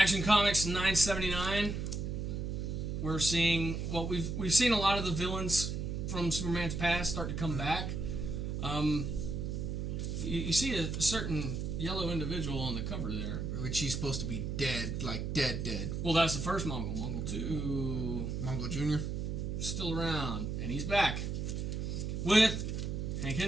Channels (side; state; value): right; noise; hum, 3 dB below the sound